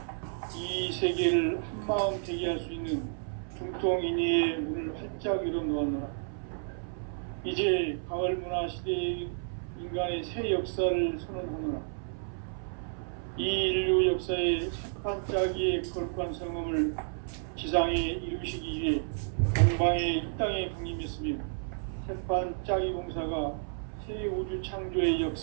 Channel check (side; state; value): left; silent; 57 dB below the other